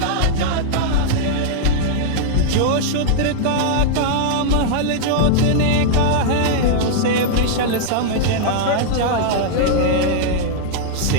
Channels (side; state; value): both; different; correlation -0.01